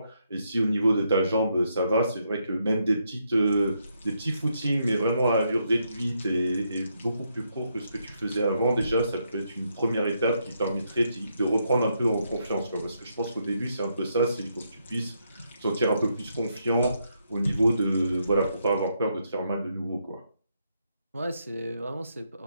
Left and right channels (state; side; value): inverted; both; correlation -0.78